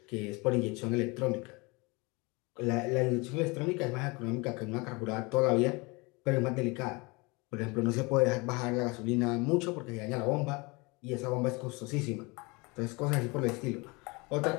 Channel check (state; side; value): quieter; right; 26.7 dB